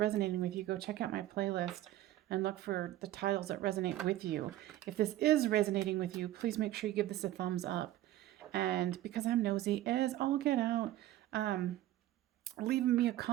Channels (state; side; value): quieter; left; 14.5 dB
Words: with you, go check out my playlist and look for the titles that resonate with you. If this is resonating with you, please make sure you give this a thumbs up. And because I'm nosy as all get out, leaving me a